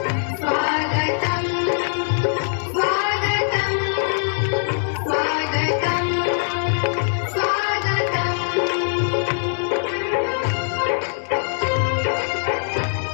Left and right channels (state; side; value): silent; right; digital silence